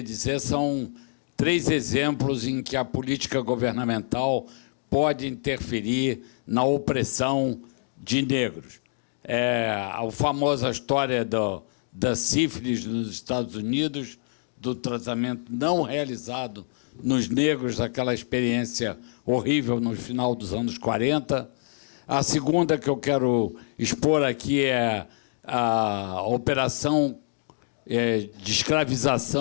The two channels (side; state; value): right; silent; digital silence